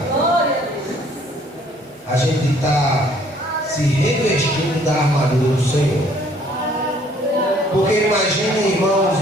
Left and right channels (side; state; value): both; normal; correlation 0.60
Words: a gente está se revestindo da armadura do Senhor. Porque imagine, irmãos,